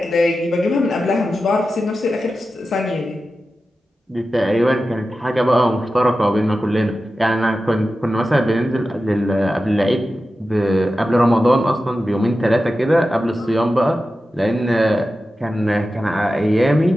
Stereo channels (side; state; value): both; normal; correlation 0.93